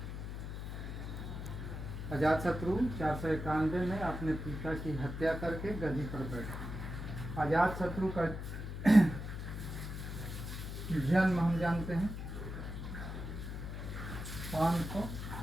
अजातशत्रु 491 में अपने पिता की हत्या करके गद्दी पर बैठे। अजातशत्रु का जन्म हम जानते हैं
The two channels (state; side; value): noise; left; hum, 6 dB below the sound